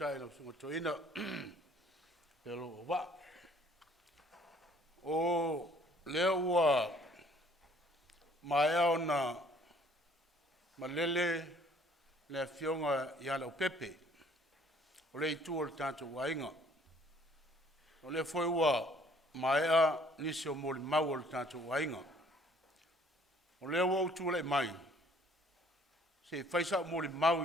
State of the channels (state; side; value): normal; both; correlation 0.59